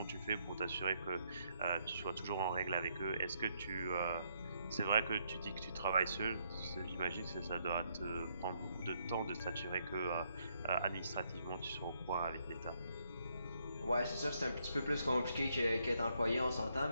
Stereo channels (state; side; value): inverted; both; correlation -0.74